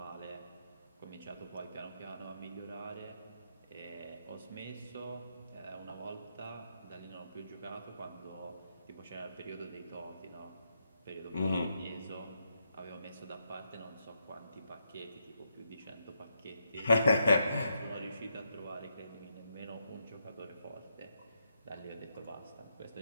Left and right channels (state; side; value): inverted; both; correlation -0.81